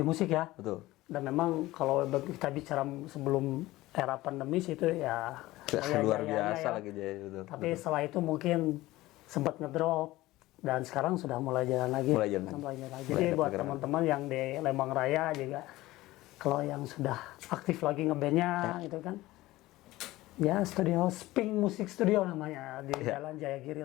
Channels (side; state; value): right; quieter; 17.9 dB